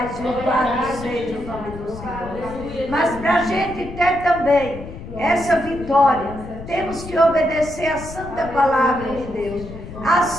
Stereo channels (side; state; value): left; noise; rumble, 12 dB below the sound